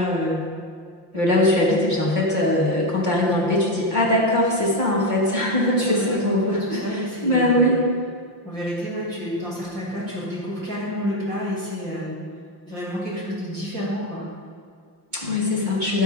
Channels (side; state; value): left; late; 5.7 ms